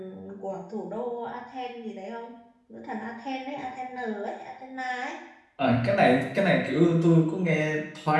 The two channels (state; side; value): identical; both; correlation 1.00